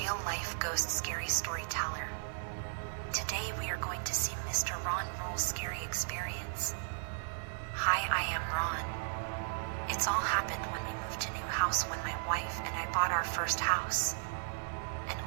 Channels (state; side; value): silent; left; 54 dB below the other